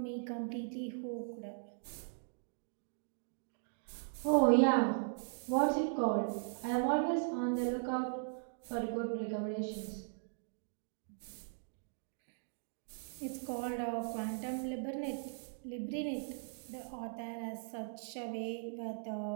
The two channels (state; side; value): silent; left; digital silence